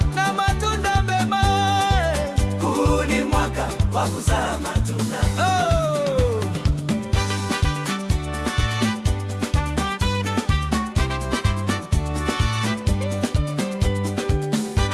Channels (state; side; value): identical; both; correlation 1.00